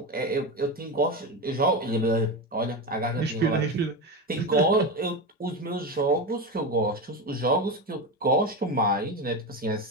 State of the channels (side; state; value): both; normal; correlation 0.18